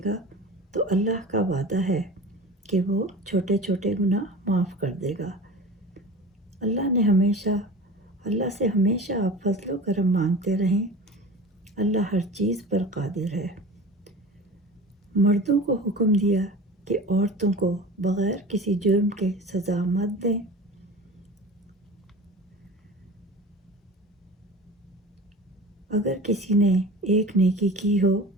گا تو اللہ کا وعدہ ہے کہ وہ چھوٹے چھوٹے گناہ معاف کر دے گا۔ اللہ سے ہمیشہ آپ فضل و کرم مانگتے رہیں۔ اللہ ہر چیز پر قادر ہے۔ مردوں کو حکم دیا کہ عورتوں کو بغیر کسی جرم کے سزا مت دیں۔ اگر کسی نے ایک نیکی کی ہو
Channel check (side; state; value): both; normal; correlation 0.36